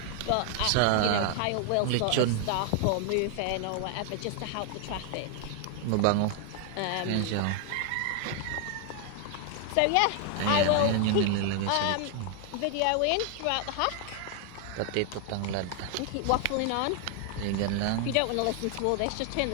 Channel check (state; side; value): different; both; correlation 0.00